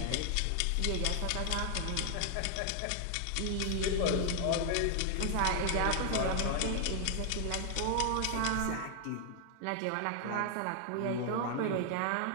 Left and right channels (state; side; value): different; both; correlation 0.00